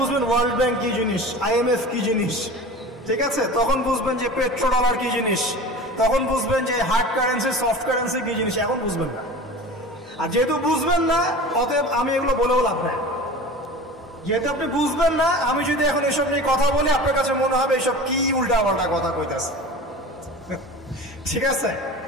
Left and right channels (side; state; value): both; normal; correlation 0.35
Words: ওয়ার্ল্ড ব্যাংক কি জিনিস, IMF কি জিনিস, ঠিক আছে? তখন বুঝবেন যে পেট্রো ডলার কি জিনিস, তখন বুঝবেন যে হার্ড কারেন্সি, সফট কারেন্সি কি জিনিস। এখন বুঝবেন না। আর যেহেতু বুঝবেন না, অতএব আমি এগুলো বলেও লাভ নাই। যেহেতু আপনি বুঝবেন না, আমি যদি এখন এসব নিয়ে কথা বলি, আপনার কাছে মনে হবে এসব কি উল্টা পাল্টা কথা কইতেছে, ঠিক আছে?